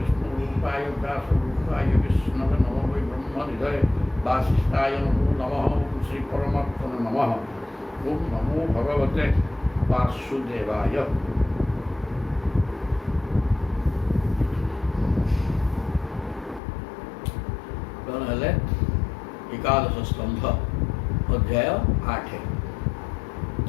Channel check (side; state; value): right; drops out; at 16.6 s